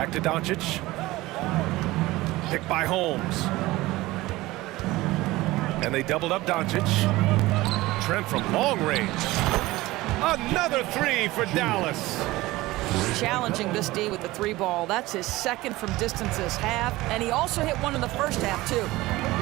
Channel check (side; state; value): left; quieter; 18.9 dB